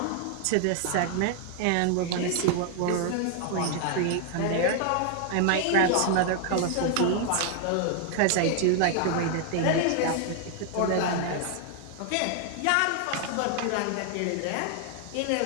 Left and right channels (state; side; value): different; both; correlation 0.00